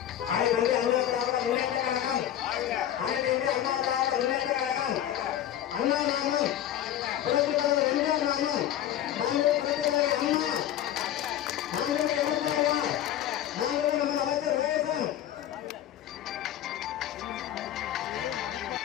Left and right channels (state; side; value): quieter; right; 11.6 dB